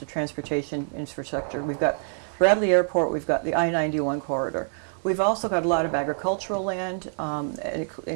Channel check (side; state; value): left; silent; digital silence